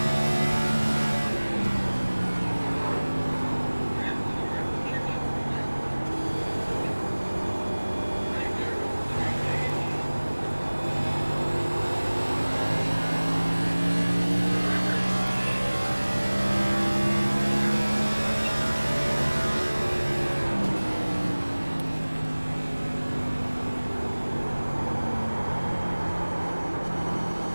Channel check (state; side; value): inverted; both; correlation -1.00